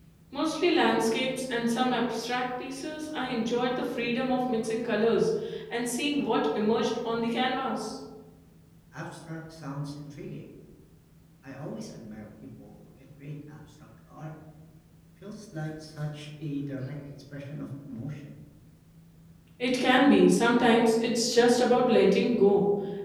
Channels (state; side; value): identical; both; correlation 1.00